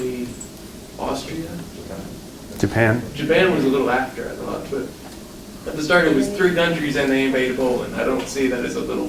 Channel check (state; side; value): identical; both; correlation 1.00